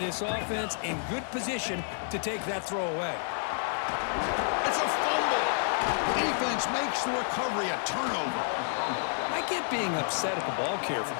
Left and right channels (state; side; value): silent; right; 58 dB below the other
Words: this offense in good position to take that throw away. It's a fumble. Defense makes the recovery a turnover. I get being upset at the ball carrier for